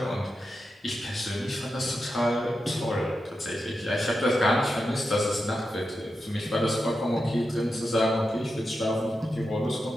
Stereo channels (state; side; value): normal; both; correlation 0.89